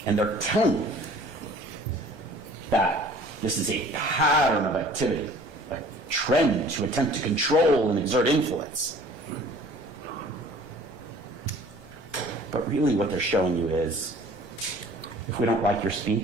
And they're telling you that this is a pattern of activity, trend to attempt to control and exert influence. But really what they're showing you is, if we don't like your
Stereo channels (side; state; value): right; late; 1.2 ms